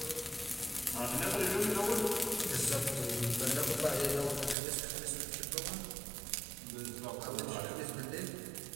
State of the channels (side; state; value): left; drops out; at 4.5 s